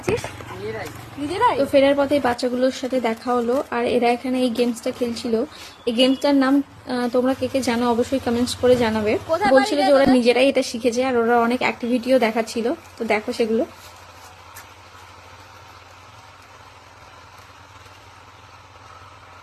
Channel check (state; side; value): identical; both; correlation 1.00